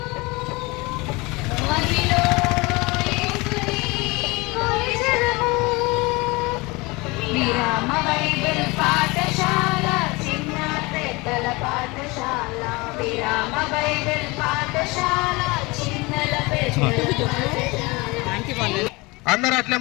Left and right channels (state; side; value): quieter; right; 24.6 dB